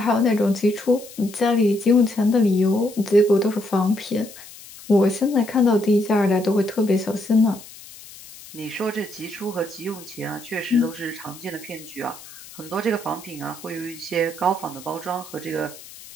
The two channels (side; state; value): left; noise; hiss, 18 dB below the sound